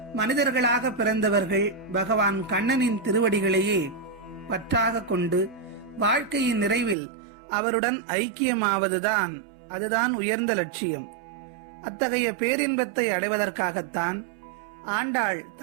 மனிதர்களாக பிறந்தவர்கள் பகவான் கண்ணனின் திருவடிகளையே பற்றாக கொண்டு வாழ்க்கையின் நிறைவில் அவருடன் ஐக்கியமாவதுதான் அதுதான் உயர்ந்த லட்சியம். அத்தகைய பேரின்பத்தை அடைவதற்காகத்தான் ஆண்டாள்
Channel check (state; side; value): drops out; left; at 7.0 s